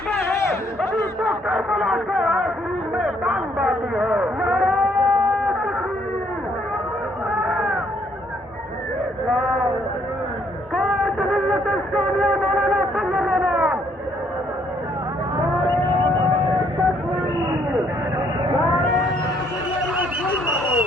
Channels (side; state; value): both; normal; correlation 0.68